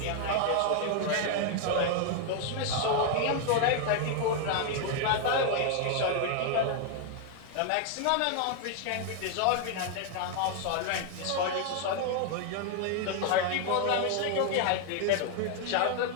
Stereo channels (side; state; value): both; different; correlation 0.00